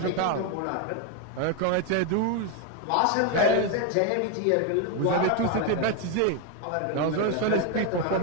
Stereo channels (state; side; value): different; both; correlation 0.01